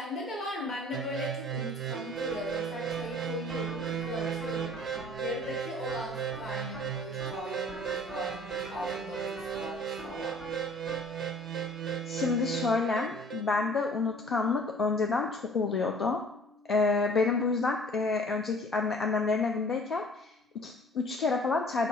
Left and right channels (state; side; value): normal; both; correlation 0.51